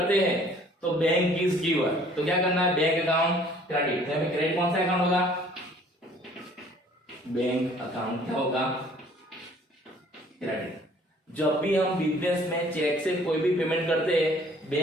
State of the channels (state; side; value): normal; both; correlation 0.56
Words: हैं तो बैंक इज गिवर, तो क्या करना है, बैंक अकाउंट क्रेडिट। क्रेडिट कौन सा अकाउंट होगा, बैंक अकाउंट क्या होगा, क्रेडिट। जब भी हम बिजनेस में चेक से कोई भी पेमेंट करते हैं,